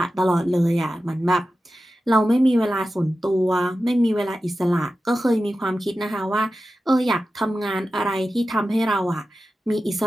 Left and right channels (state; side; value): normal; both; correlation 0.93